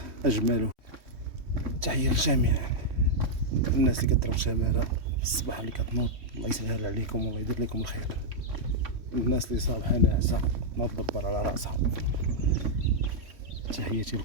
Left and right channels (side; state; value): left; late; 3.1 ms